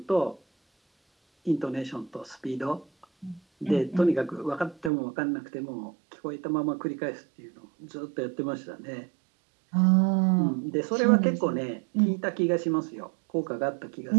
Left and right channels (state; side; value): drops out; left; at 4.9 s